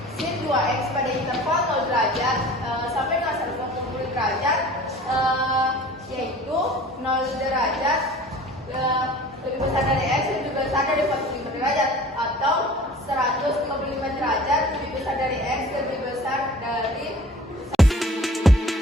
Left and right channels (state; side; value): normal; both; correlation 0.45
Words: sin 2x pada interval 0 derajat sampai dengan 180 derajat, yaitu 0 derajat lebih besar dari x dan lebih besar dari 45 derajat.